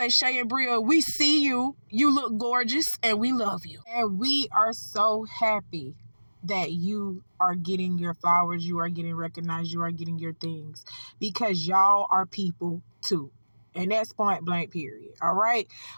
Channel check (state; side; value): inverted; both; correlation -1.00